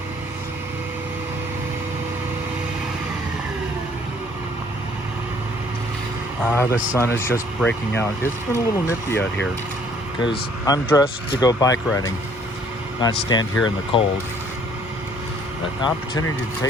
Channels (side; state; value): both; normal; correlation 0.60